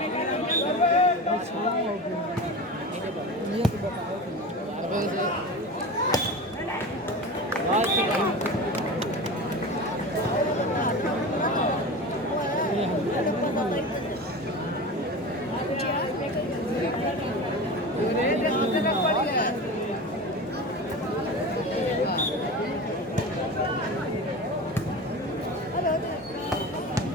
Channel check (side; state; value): both; normal; correlation 0.29